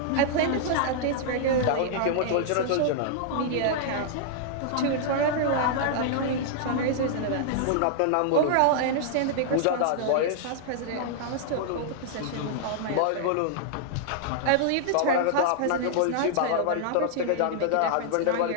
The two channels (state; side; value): different; both; correlation -0.01